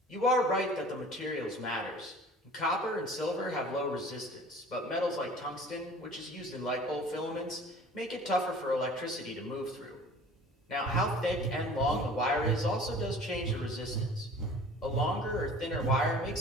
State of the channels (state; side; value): normal; both; correlation 0.46